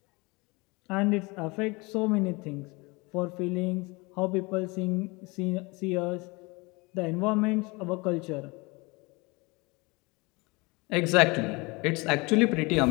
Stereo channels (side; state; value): right; quieter; 26.1 dB